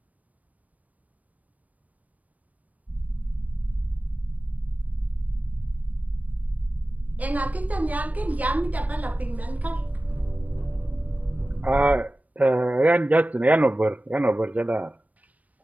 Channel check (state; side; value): late; left; 0.073 ms